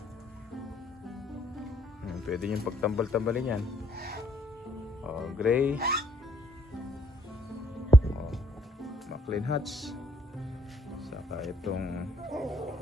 Pwede yung pagtambal-tambalin yan. Gray, Macklin Hats, saka itong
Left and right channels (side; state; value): both; normal; correlation 0.67